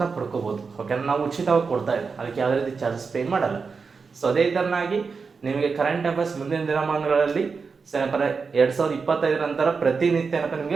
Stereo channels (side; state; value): left; quieter; 5.0 dB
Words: ಪಡ್ಕೋಬೋದು. ಓಕೆನಾ, ನಾವು ಉಚಿತವಾಗಿ ಕೊಡ್ತಾ ಇದ್ದೀವಿ, ಅದಕ್ಕೆ ಯಾವುದೇ ರೀತಿ ಚಾರ್ಜಸ್ ಪೇ ಮಾಡಲ್ಲ. ಸೊ ಅದೇ ಥರನಾಗಿ ನಿಮಗೆ ಕರೆಂಟ್ ಅಫೇರ್ಸ್ ಮುಂದಿನ ದಿನಮಾನಗಳಲ್ಲಿ ಏನಪ್ಪ 2025 ನಂತರ ಪ್ರತಿನಿತ್ಯ ಏನಪ್ಪ